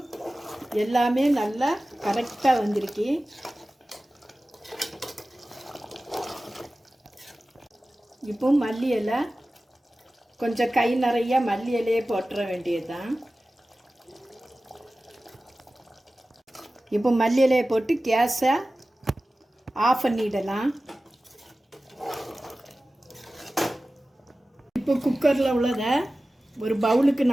எல்லாமே நல்லா கரெக்டாக வந்திருக்கு. இப்போ மல்லி இலை கொஞ்சம் கை நிறைய மல்லி இலையே போட்டுற வேண்டியது தான். இப்போ மல்லி இலையை போட்டு கேஸை ஆஃப் பண்ணிடலாம். இப்போ குக்கரில் உள்ளதை ஒரு பவுலுக்கு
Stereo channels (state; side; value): normal; both; correlation 0.96